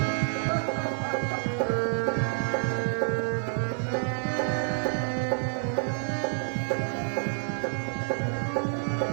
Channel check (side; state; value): left; silent; 59 dB below the other